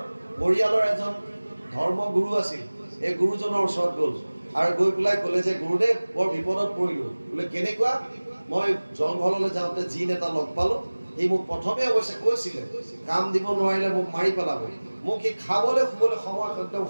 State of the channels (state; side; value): inverted; both; correlation -1.00